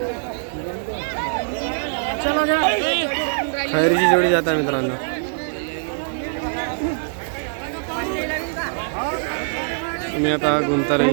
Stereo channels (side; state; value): left; silent; digital silence